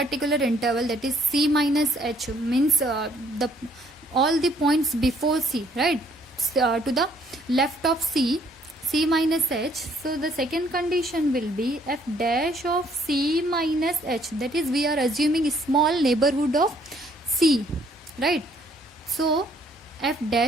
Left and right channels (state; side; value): normal; both; correlation 0.64